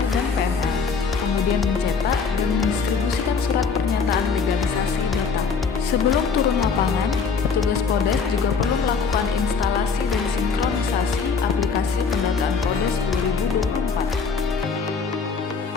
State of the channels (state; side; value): quieter; right; 5.4 dB